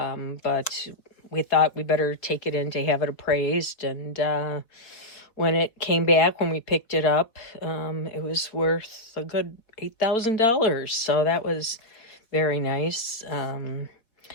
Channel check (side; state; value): right; late; 4.3 ms